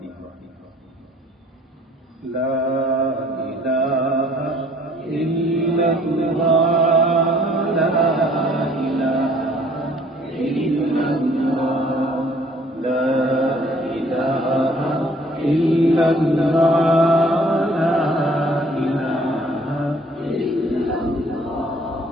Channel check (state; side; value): normal; both; correlation 0.58